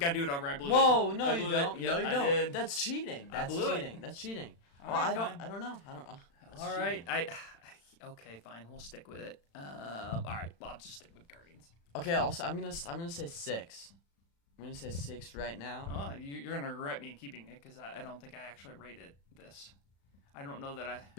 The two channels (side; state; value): right; late; 35 ms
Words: do it over. I blew it. Whoa, no I you blew don't. it. No Yep, you I don't. did. That's cheating. That's blew it. cheating. That's cheating. All Well, right, I don't know. That's All right, cheating. okay, fine. We'll stick with it. All right, well, I'll just stick with Guardians. Okay, also I'm gonna say 6. I'm gonna say 6 right now. Oh, you're gonna regret me keeping it because I don't think I actually rated this. I don't know that I.